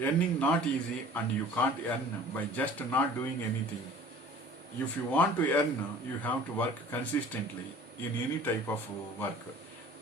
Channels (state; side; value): normal; both; correlation 0.47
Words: not easy, and you can't earn by just not doing anything. If you want to earn, you have to work consistently in any type of work,